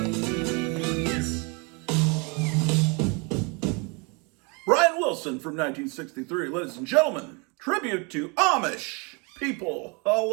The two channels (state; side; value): quieter; left; 31.3 dB